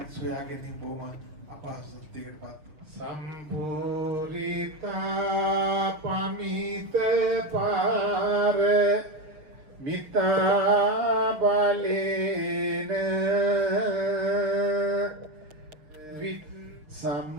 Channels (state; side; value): late; left; 6.5 ms